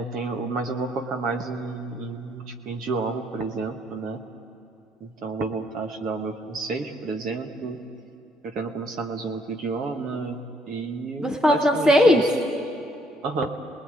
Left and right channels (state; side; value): normal; both; correlation 0.67